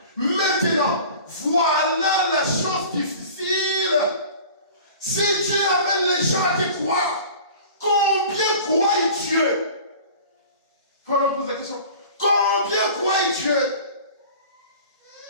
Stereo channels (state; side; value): inverted; both; correlation -0.42